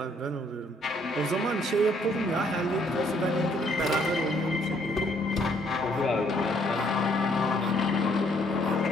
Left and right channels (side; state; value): both; normal; correlation 0.67